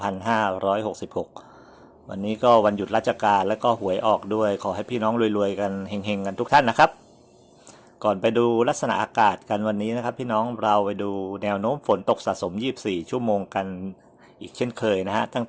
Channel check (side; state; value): both; identical; correlation 1.00